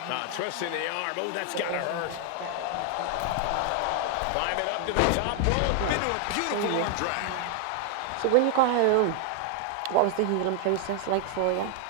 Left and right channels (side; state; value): both; different; correlation 0.00